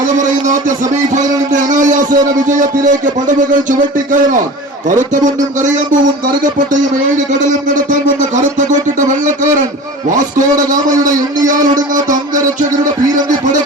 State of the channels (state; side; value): normal; both; correlation 0.36